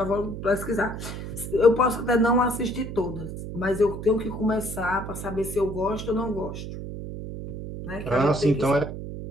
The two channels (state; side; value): noise; right; hum, 8 dB below the sound